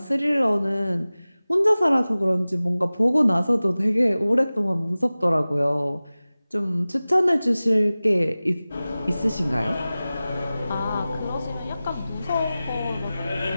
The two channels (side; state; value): both; inverted; correlation -0.97